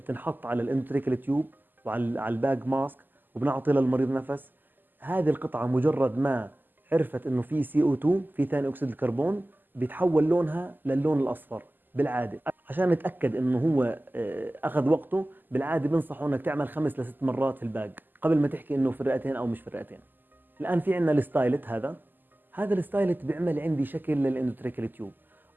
على الاندوتريكال تيوب وعلى الباج ماسك وبنعطي للمريض نفس. هذه القطعه مجرد ما عرفت انه في CO2 في ثاني اكسيد الكربون بيتحول لونها للون الاصفر. بالعاده عشان نتاكد انه هو اخذ وقته، بالعاده بنصحوا انك تعمل 5 ل 6 مرات في الباج قبل ما تحكي انه في الرئتين او مش في الرئتين. الان في عندنا الستايلت. هذا الستايلت بيعمل عندي شكل للاندوتريكال تيوب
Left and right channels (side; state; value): left; late; 0.089 ms